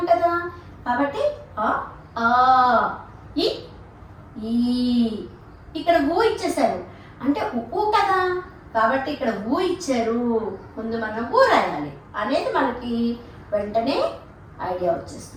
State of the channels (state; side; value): identical; both; correlation 1.00